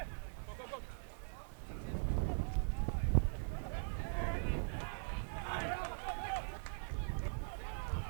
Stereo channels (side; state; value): left; silent; digital silence